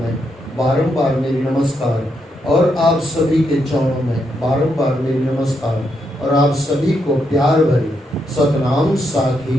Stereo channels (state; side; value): normal; both; correlation 0.80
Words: बारंबार मेरी नमस्कार और आप सभी के चरणों में बारंबार मेरी नमस्कार और आप सभी को प्यार भरी सतनाम